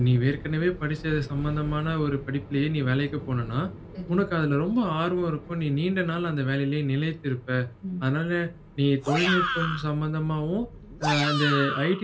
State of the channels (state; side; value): identical; both; correlation 1.00